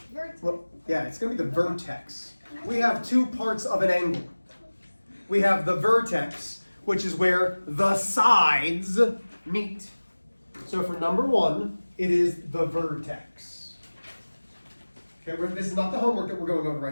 Vertex. Well, yeah, it's going to be the vertex. We have two parts of an angle. We have the vertex, which is where the sides meet. So for number 1, it is the vertex. Okay, this is not the homework that we're going over right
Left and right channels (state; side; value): inverted; both; correlation -1.00